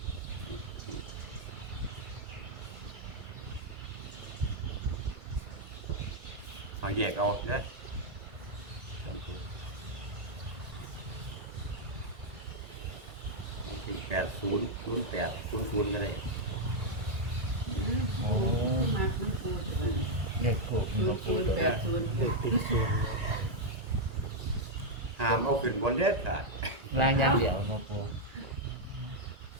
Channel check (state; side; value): late; left; 1.8 ms